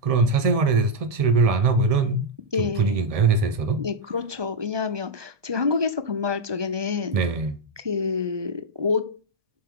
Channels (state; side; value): late; left; 1.7 ms